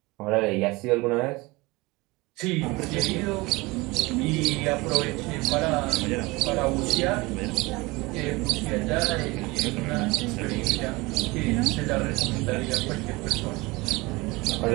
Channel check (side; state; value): left; quieter; 23.1 dB